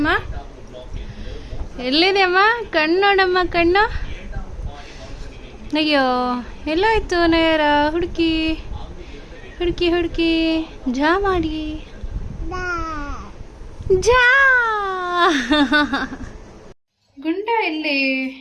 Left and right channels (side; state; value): both; identical; correlation 1.00